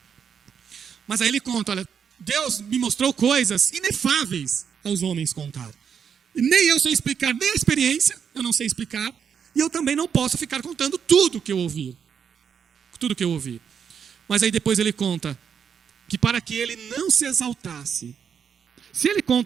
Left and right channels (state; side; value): quieter; left; 7.4 dB